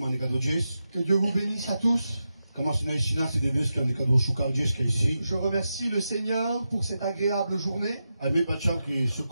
que Dieu vous bénisse à tous. Je remercie le Seigneur pour cette agréable journée.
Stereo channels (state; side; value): inverted; both; correlation -0.89